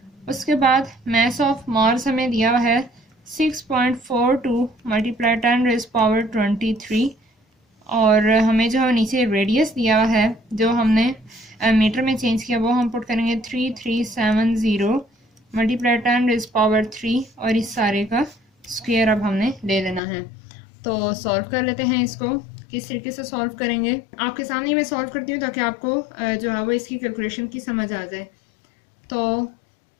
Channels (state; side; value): drops out; right; at 20.0 s